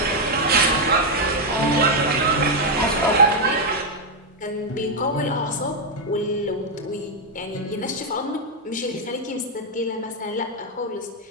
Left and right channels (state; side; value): normal; both; correlation 0.01